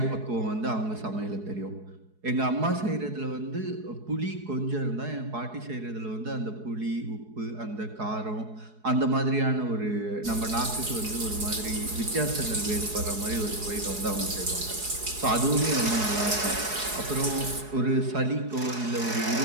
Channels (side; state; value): left; late; 4.7 ms